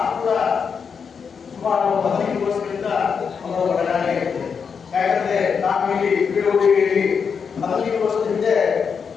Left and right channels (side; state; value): right; quieter; 6.2 dB